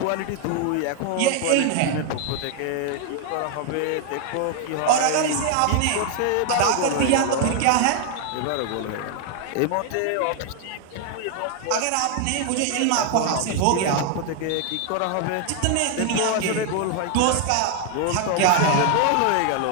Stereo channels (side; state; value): both; different; correlation 0.00